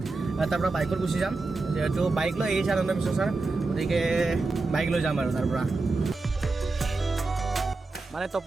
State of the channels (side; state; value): left; quieter; 3.5 dB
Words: তাৰ পৰা বাইকত গুচি যাম। যিহেতু বাইক লৈ আহিছে আনন্দ মিশ্ৰ ছাৰ, গতিকে বাইক লৈ যাম আৰু তাৰ পৰা। মানে